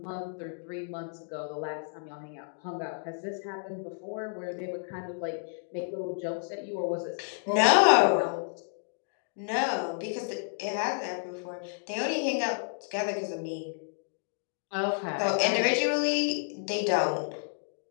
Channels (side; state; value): right; silent; digital silence